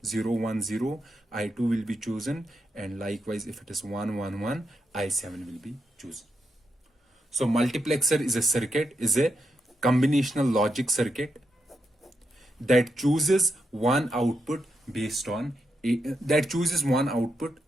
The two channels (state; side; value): normal; both; correlation 0.84